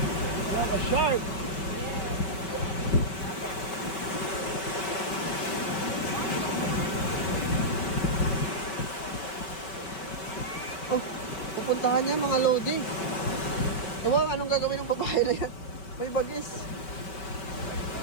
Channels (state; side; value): late; right; 5.1 ms